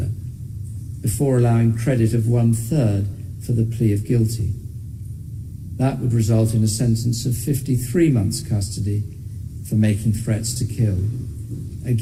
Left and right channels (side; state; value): both; identical; correlation 1.00